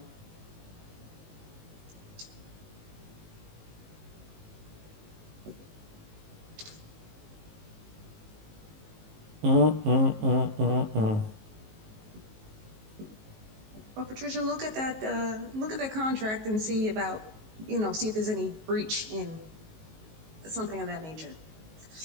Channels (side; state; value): left; late; 19 ms